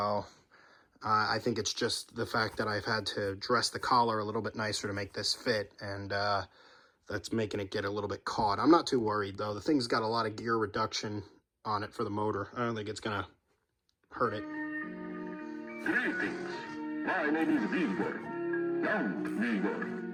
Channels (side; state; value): both; identical; correlation 1.00